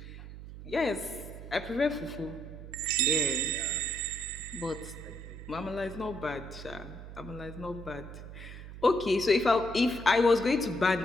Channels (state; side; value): noise; right; hum, 12 dB below the sound